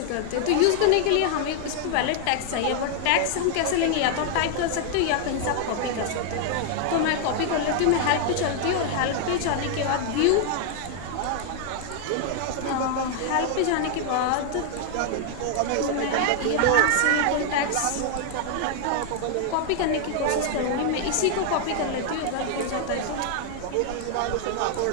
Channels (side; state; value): both; different; correlation 0.00